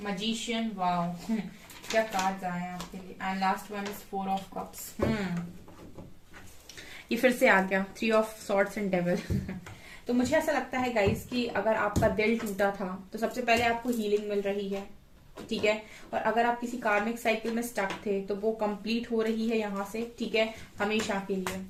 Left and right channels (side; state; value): both; identical; correlation 1.00